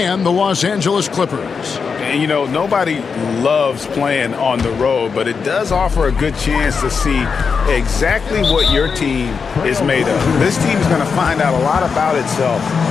the Los Angeles Clippers. And, you know, nobody loves playing on the road, but it does offer a good chance to see exactly what your team is made of. This team is going to find out a lot about itself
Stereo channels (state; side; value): quieter; right; 5.6 dB